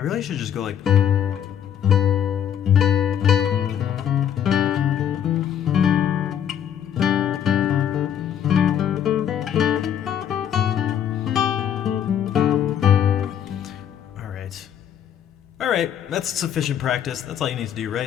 really should just go like. All right, that's sufficient practice. That's all you need to do,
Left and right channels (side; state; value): right; quieter; 9.4 dB